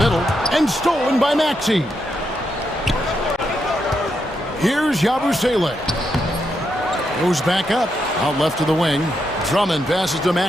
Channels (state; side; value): normal; both; correlation 0.82